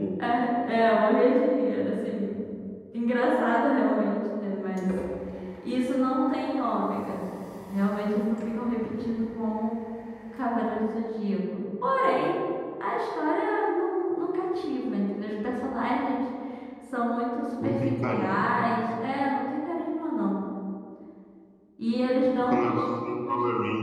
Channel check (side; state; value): both; identical; correlation 1.00